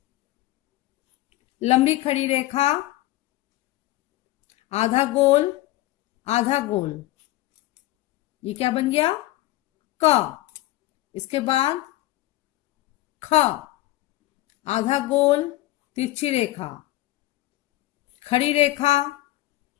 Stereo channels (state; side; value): quieter; right; 17.0 dB